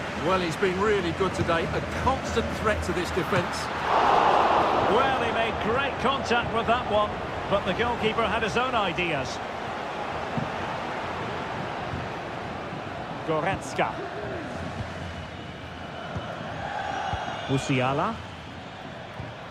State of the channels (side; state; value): both; identical; correlation 1.00